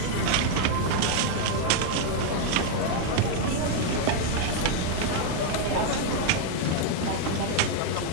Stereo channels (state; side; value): different; both; correlation 0.00